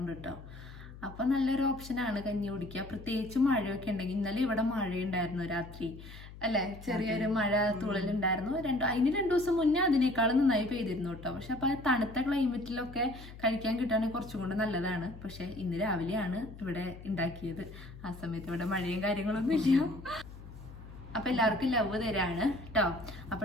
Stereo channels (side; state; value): left; noise; hum, 15 dB below the sound